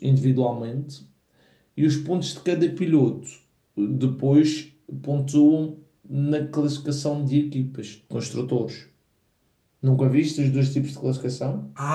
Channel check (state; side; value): identical; both; correlation 1.00